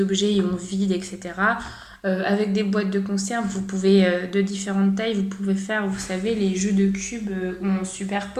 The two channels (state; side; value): identical; both; correlation 1.00